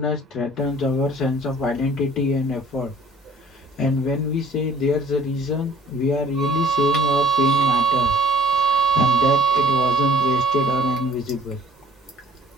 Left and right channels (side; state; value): both; normal; correlation 0.55